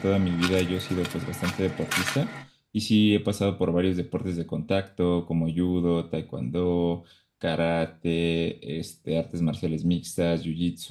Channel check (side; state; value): both; identical; correlation 1.00